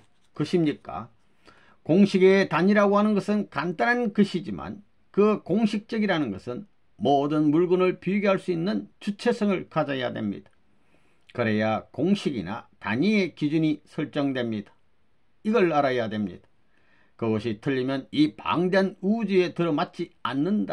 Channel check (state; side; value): identical; both; correlation 1.00